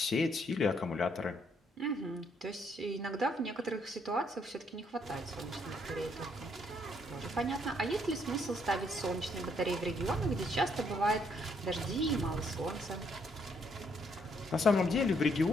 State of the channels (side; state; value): both; normal; correlation 0.71